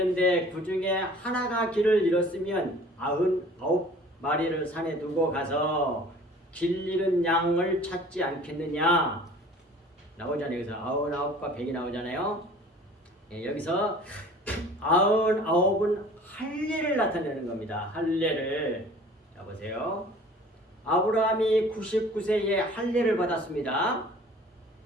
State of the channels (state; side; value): normal; both; correlation 0.48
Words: 그 중에 하나가 길을 잃었으면 99마리를 산에 두고 가서 길 잃은 양을 찾지 않겠느냐? 나오잖아요. 여기서 99과 100이 나오잖아요. 여기서 99은 할례를 나타내는 겁니다. 할례를. 자, 보세요. 아브라함이 99세에 할례를 받았습니다.